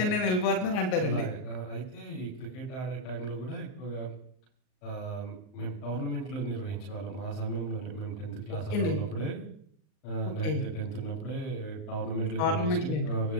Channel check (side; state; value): right; late; 38 ms